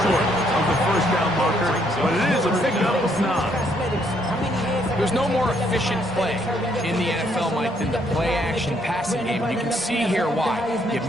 short of the first down marker, but it is a pickup of 9. There's no more efficient play in the NFL, Mike, than the play-action passing game. You can see here why. You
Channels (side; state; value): both; normal; correlation 0.70